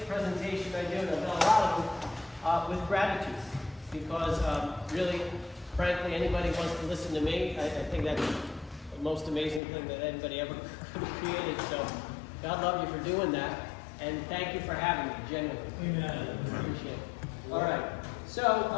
presentation I do, and I've done a lot of them, with gratitude. Because really, frankly, anybody wants to listen to me, I think that's the most amazing thing that anybody ever created. So God love you for doing that. And thank you for having me, genuinely. Amen. Appreciate it. All right. So,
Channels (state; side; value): drops out; right; at 9.6 s